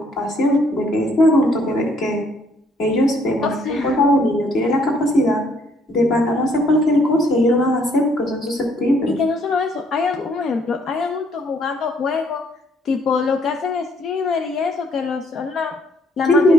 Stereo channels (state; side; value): normal; both; correlation 0.66